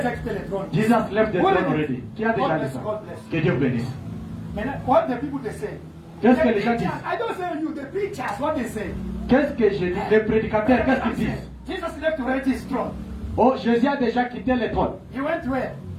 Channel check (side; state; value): both; identical; correlation 1.00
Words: quitté le trône. Jesus left the What throne is it? already. Qui a déjà God dit bless, ça? God bless. Que Dieu bénisse. Maintenant, what the people they say? Qu'est-ce que The les gens preachers, disent? I don't say you, the preachers, what they say? Qu'est-ce que je dis? Les prédicateurs, qu'est-ce qu'ils disent? Jesus left already his throne. Oh, Jésus a déjà quitté le trône. He went where?